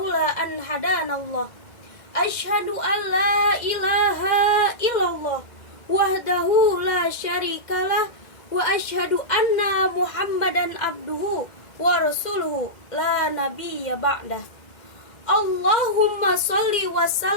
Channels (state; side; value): late; right; 2.0 ms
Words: an hadanallah. Asyhadu an la ilaha illallah wahdahu la syarikalah wa asyhadu anna Muhammadan abduhu wa rasuluhu la nabiyya ba'dah. Allahumma sholli wa